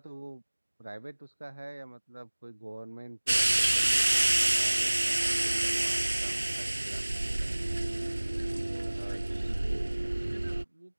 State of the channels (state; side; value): inverted; both; correlation -1.00